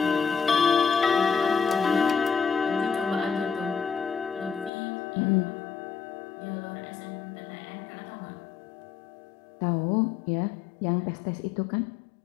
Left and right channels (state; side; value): drops out; right; at 4.7 s